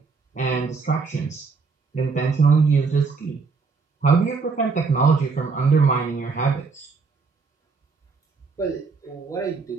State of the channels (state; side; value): quieter; left; 4.6 dB